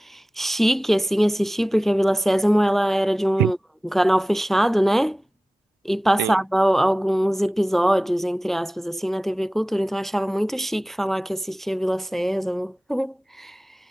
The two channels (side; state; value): both; normal; correlation 0.97